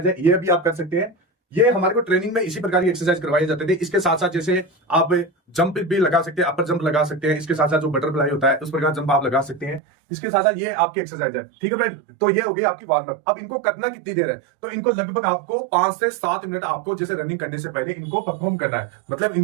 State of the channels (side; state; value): left; drops out; at 9.8 s